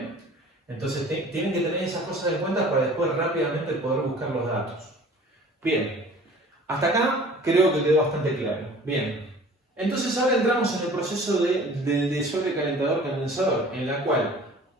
Entonces, tienen que tener esas cosas en cuenta para después rápidamente poder buscar los datos. Bien, hasta acá creo que quedó bastante claro. Bien, entonces ahora entramos en el proceso del sobrecalentador condensador, en la cual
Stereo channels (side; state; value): both; normal; correlation 0.47